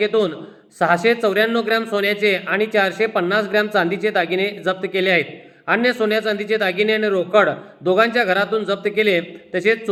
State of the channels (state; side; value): identical; both; correlation 1.00